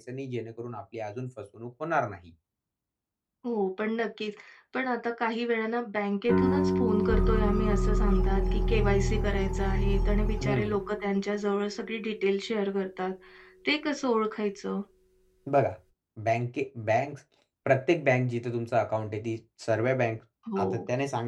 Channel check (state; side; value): identical; both; correlation 1.00